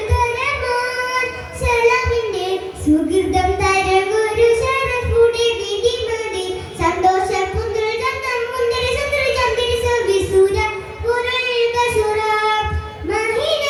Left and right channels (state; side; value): identical; both; correlation 1.00